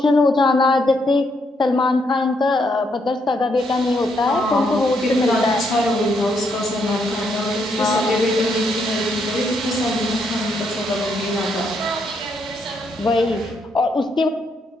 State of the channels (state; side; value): normal; both; correlation 0.76